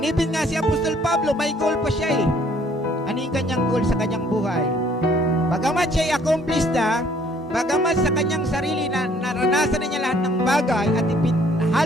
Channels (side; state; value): both; normal; correlation 0.61